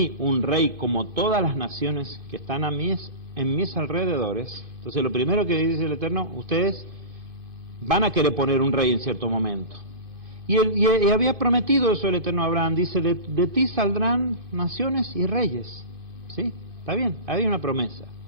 un rey como todas las naciones que están en mis alrededores. Entonces lo primero que dice el Eterno, ustedes van a querer poner un rey en cierto momento. Y había prometido eso el Eterno a Abraham, dice, de ti saldrán naciones y reyes. ¿Sí? Está bien, había una promesa.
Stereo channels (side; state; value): left; late; 2.5 ms